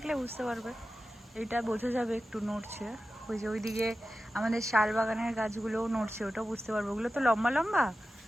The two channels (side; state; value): both; normal; correlation 0.93